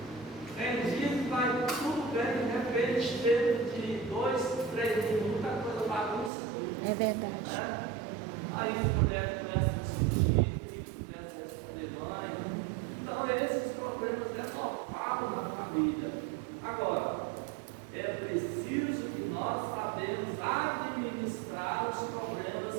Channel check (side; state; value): left; drops out; at 6.3 s